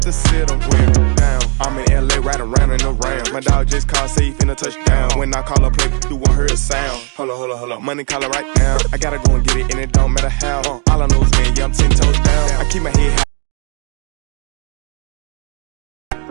to sit them down. I'm in LA, right around in the round. My dog just called, say he finna touchdown. When I call a play, you won't hear a sound. Hold up, money call it right now. I gotta go and get it, and it don't matter how. All I know is when, yeah, I'm 10 toes down. I keep my head high.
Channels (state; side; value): quieter; left; 38.1 dB